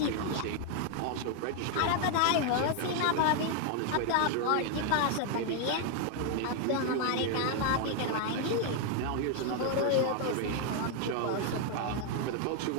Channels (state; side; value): different; both; correlation 0.00